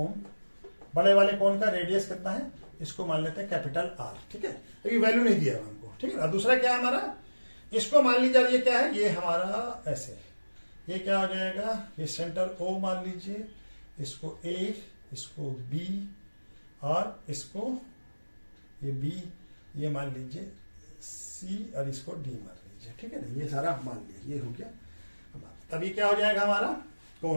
बड़े वाले कोन का रेडियस कितना है, इसको मान लेते हैं कैपिटल आर, ठीक है। अभी वैल्यू नहीं दिया हमको, ठीक है। और दूसरा क्या है हमारा, इसको मान लीजिए, ये क्या है, ये हमारा ऐसे, ये क्या हो जाएगा, ये सेंटर ओ मान लीजिए, इसको ए, इसको बी, और इसको ये बी, ये मान लीजिए सी, और इसको डी मान लीजिए, ठीक है ना। ये सारा मान लिया, ये हो गया। तभी क्या हो जाएगा हमारा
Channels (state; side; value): inverted; both; correlation -1.00